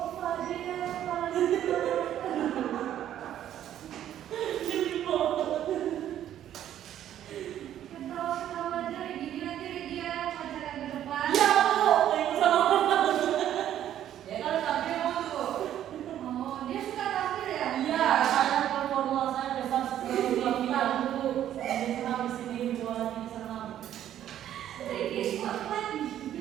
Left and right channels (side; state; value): left; quieter; 11.2 dB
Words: Fadil? Ketawa-ketawa aja kayak gini nanti dia pacaran ke depan. Ya Bu, yang sama. Ya kalau tampil mau tuh. Oh, dia suka tampil ya? Iya, saya performa saya besar sekali final Bu. Saya senang di sini buat ini senang. Ricky Scotland.